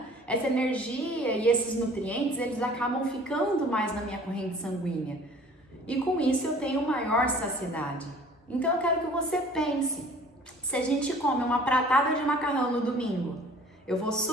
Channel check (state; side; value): normal; both; correlation 0.50